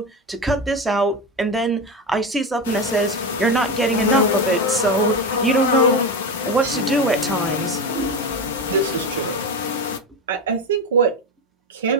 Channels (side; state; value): both; normal; correlation 0.19